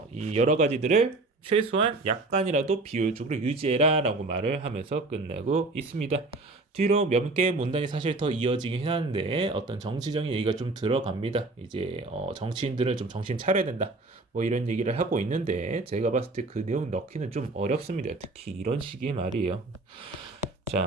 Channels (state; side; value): quieter; left; 3.1 dB